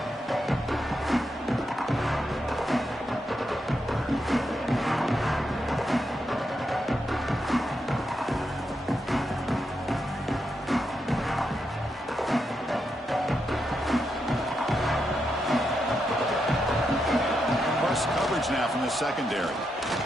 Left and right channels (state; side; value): normal; both; correlation 0.83